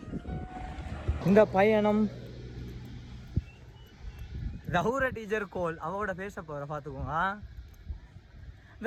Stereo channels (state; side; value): identical; both; correlation 1.00